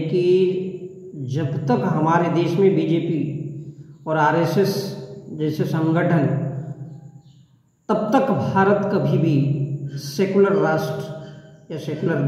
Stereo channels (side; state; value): both; identical; correlation 1.00